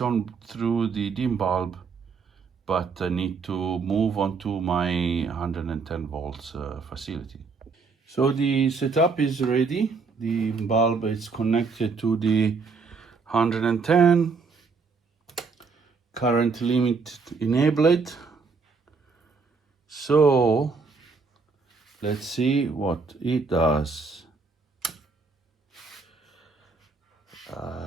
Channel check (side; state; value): left; quieter; 4.8 dB